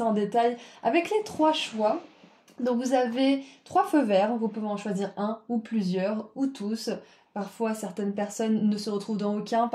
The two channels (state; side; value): identical; both; correlation 1.00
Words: en détail avec les trois choix. Donc vous avez trois feux verts, vous pouvez en choisir un ou plusieurs ou tous. Parfois certaines personnes ne se retrouvent dans aucun,